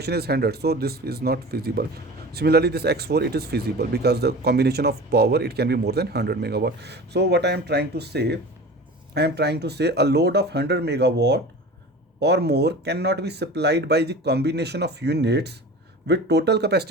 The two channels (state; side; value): normal; both; correlation 0.36